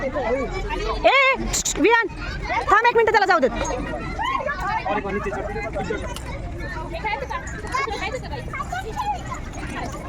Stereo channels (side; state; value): both; identical; correlation 1.00